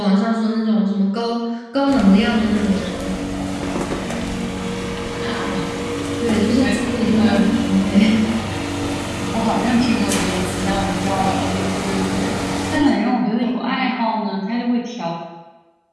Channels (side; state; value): both; identical; correlation 1.00